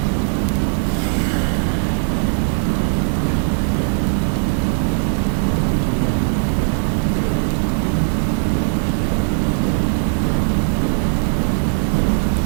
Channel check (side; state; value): left; silent; 57 dB below the other